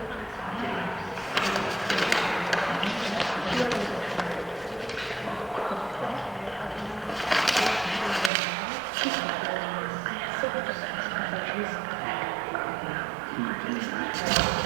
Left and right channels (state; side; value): drops out; left; at 8.3 s